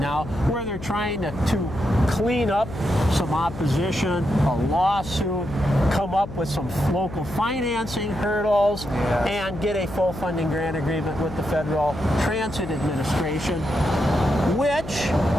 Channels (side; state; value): left; noise; hum, 12 dB below the sound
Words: where they're trying to clean up some opposition, a lawsuit, come up with some local financing hurdles, and get a full funding grant agreement with the Federal Transit Administration, which,